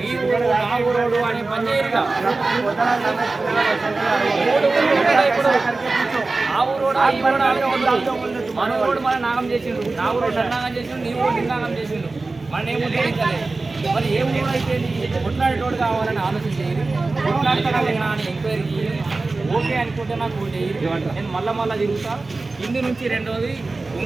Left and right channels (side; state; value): left; quieter; 3.5 dB